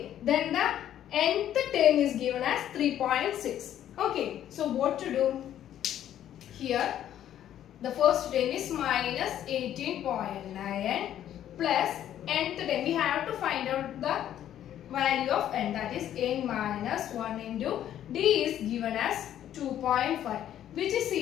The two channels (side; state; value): right; quieter; 11.2 dB